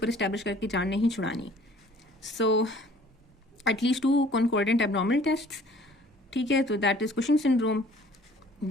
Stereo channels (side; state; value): both; normal; correlation 0.53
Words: इस्टेब्लिश करके जान नहीं छुड़ानी। So at least 2 concordant abnormal test. ठीक है, तो that is Cushing syndrome.